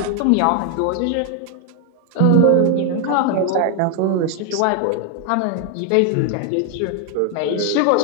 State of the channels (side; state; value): both; different; correlation 0.00